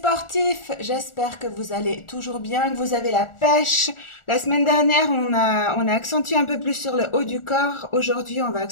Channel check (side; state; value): right; late; 1.4 ms